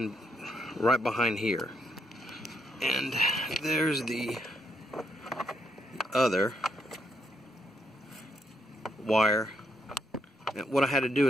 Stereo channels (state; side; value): normal; both; correlation 0.76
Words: right behind here, and there's the other wire. And what I had to do